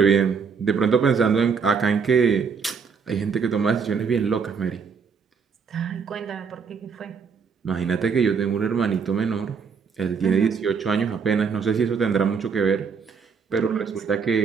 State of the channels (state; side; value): quieter; left; 5.9 dB